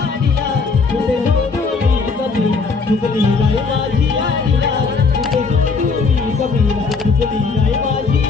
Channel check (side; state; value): right; quieter; 4.5 dB